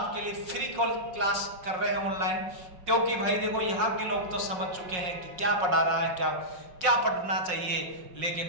लिए फ्री क्लास कर रहे हैं ऑनलाइन, क्योंकि भाई देखो यहाँ के लोग तो समझ चुके हैं कि क्या पढ़ा रहा है, क्या पढ़ना चाहिए।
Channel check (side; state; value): left; late; 5.5 ms